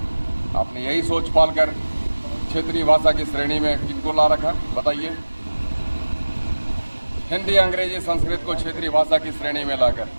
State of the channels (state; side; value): inverted; both; correlation -1.00